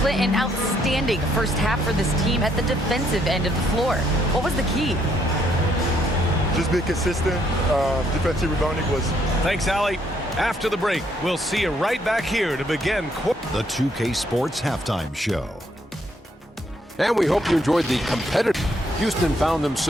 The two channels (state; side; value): normal; both; correlation 0.71